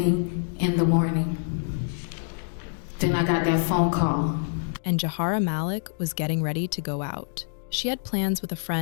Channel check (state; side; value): silent; right; digital silence